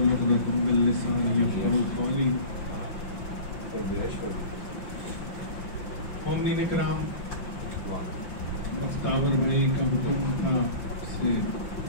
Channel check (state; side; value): late; right; 5.7 ms